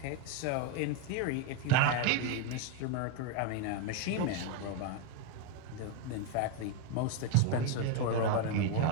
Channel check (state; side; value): different; both; correlation 0.01